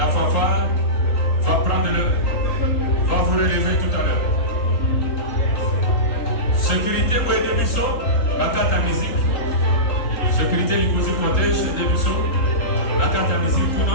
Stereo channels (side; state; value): right; late; 3.8 ms